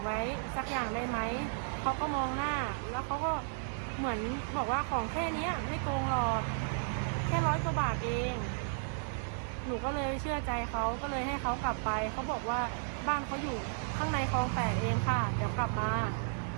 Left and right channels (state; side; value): silent; left; digital silence